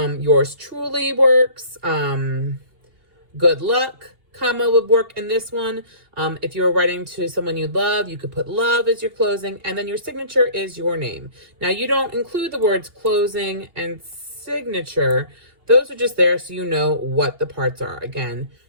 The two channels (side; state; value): left; late; 2.8 ms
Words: truly works. Good luck, comma, would work in this one. If you were writing to someone you love, you could put love as your closing, and then your signature is your name. Now, you don't include the words closing and signature. Those are just there so you know what the parts are. Again,